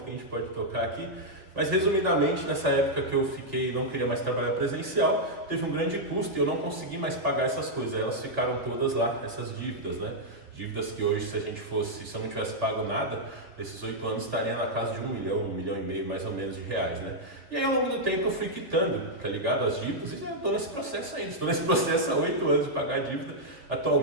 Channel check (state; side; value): late; left; 3.2 ms